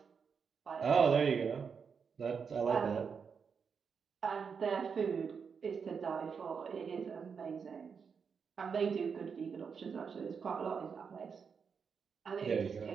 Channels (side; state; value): left; quieter; 6.1 dB